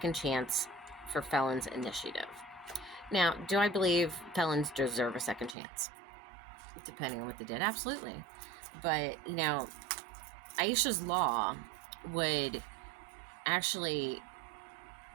Chance for Felons initiative. Now, do I believe felons deserve a second chance? Depending on what they did, absolutely. But, Aisha's Law would actually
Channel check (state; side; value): drops out; left; at 5.6 s